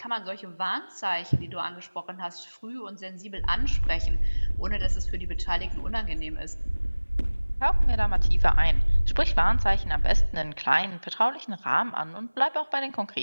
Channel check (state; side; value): inverted; both; correlation -1.00